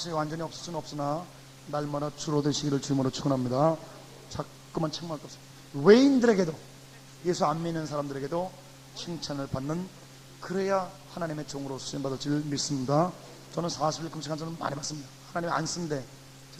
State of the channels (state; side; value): identical; both; correlation 1.00